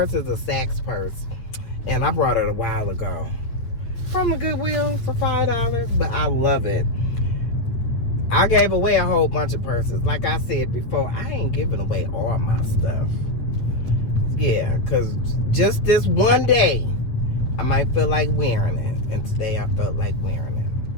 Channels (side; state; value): right; late; 8.9 ms